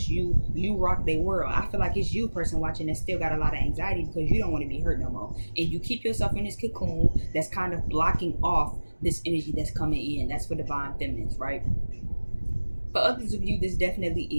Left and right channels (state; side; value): inverted; both; correlation -1.00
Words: you. You rock their world. I feel like it's you, person watching, that still got a lot of anxiety because you don't want to be hurt no more, and you keep yourself in this cocoon that's kind of blocking off this energy that's coming in. That's for divine feminines, right? For others of you, this definitely